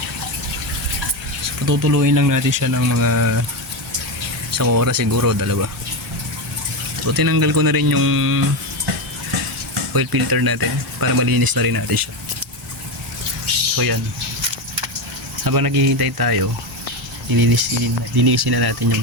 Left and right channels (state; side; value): normal; both; correlation 0.14